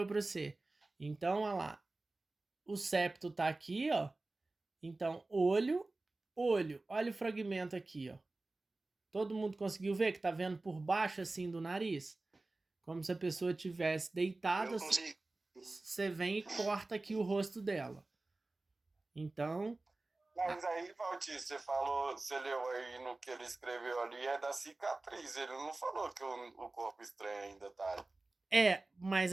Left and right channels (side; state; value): left; quieter; 3.1 dB